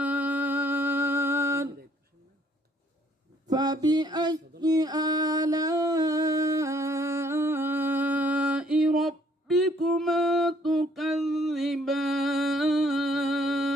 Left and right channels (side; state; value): both; normal; correlation 0.63